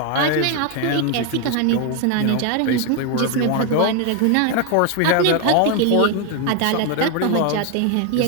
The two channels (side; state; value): both; different; correlation 0.01